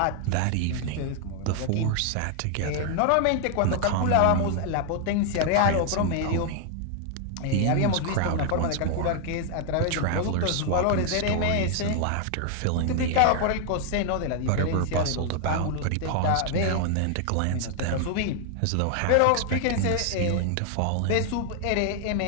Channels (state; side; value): different; both; correlation 0.00